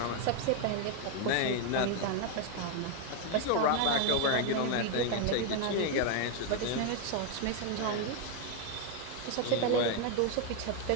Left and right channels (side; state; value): both; different; correlation 0.01